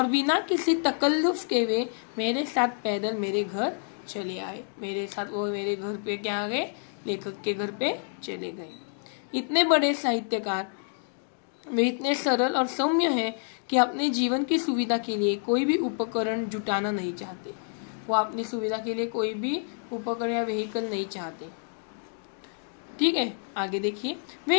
बिना किसी तकल्लुफ के वे मेरे साथ पैदल मेरे घर चले आए। मेरे साथ वो मेरे घर पे क्या आ गए? लेखक के घर पे चले गए। इतने बड़े साहित्यकार वे इतने सरल और सौम्य हैं कि अपने जीवन की सुविधा के लिए कोई भी उपकरण जुटाना नहीं चाहते। वो अपनी सुविधा के लिए कोई भी उपकरण या व्हीकल नहीं चाहते। ठीक है, आगे देखिए।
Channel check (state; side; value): silent; right; 59 dB below the other